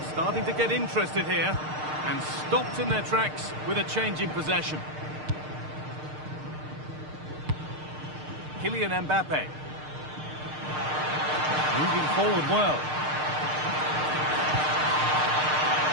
Starting to get interested here and stopped in their tracks with a change in possession. Kylian Mbappe. Moving forward well.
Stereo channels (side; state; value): left; late; 6.6 ms